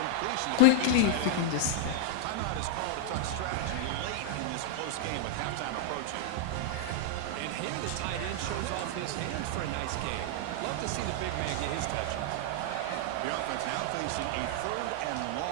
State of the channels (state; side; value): different; both; correlation 0.00